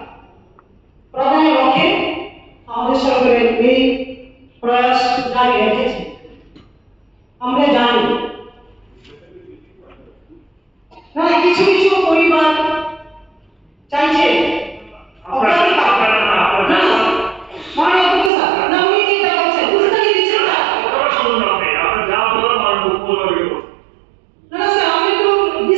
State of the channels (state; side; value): drops out; left; at 18.3 s